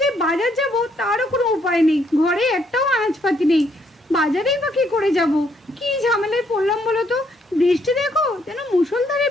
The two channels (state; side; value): normal; both; correlation 0.71